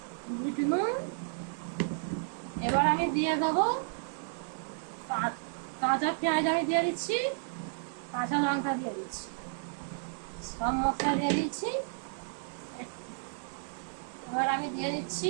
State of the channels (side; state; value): left; silent; digital silence